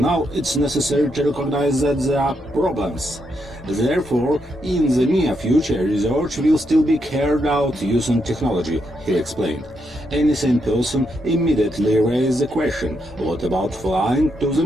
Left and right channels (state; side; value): normal; both; correlation 0.80